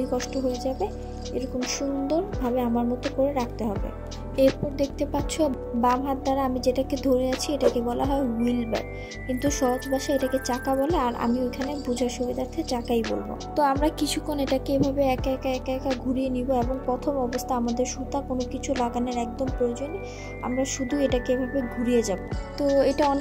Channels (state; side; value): identical; both; correlation 1.00